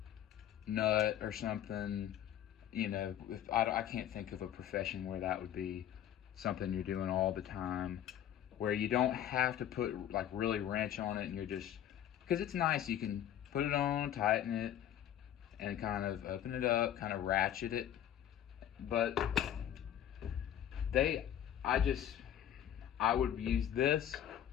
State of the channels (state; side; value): quieter; right; 10.8 dB